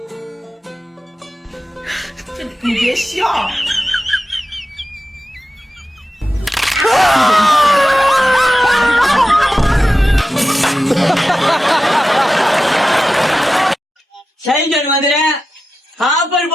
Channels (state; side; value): normal; both; correlation 0.92